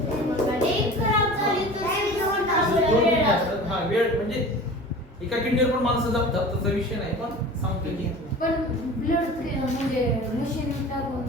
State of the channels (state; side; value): normal; both; correlation 0.38